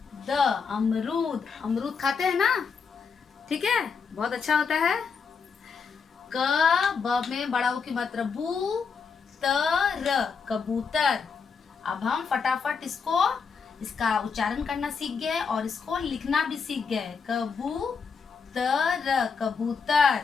अमरूद। अमरूद खाते हैं ना, ठीक है, बहुत अच्छा होता है। ब में बड़ा उ की मात्रा बू, कबूतर। अब हम फटाफट इसका उच्चारण करना सीख गए और इसको लिखना भी सीख गए। कबूतर, कबूतर।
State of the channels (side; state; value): right; quieter; 5.7 dB